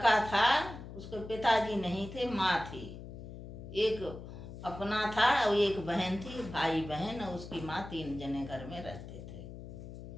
था, उसके पिताजी नहीं थे, माँ थी। एक अपना था और एक बहन थी, भाई बहन, और उसकी माँ, 3 जने घर में रहते थे।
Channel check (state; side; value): noise; left; hum, 12 dB below the sound